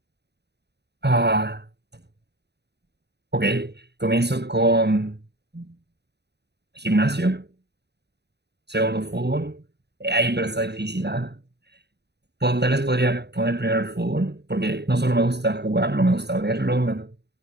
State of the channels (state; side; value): late; left; 0.49 ms